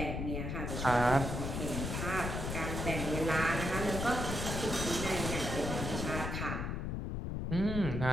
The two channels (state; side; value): noise; left; rumble, 3 dB below the sound